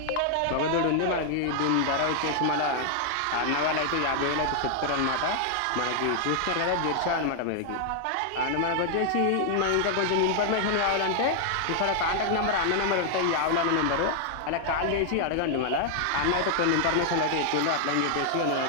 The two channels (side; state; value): both; different; correlation 0.00